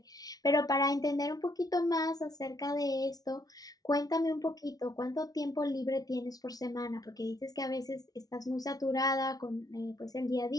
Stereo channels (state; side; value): late; right; 0.18 ms